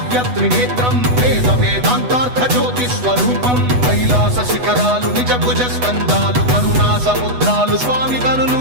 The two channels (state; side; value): late; left; 8.1 ms